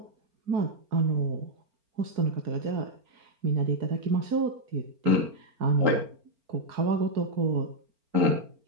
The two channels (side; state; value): left; late; 4.4 ms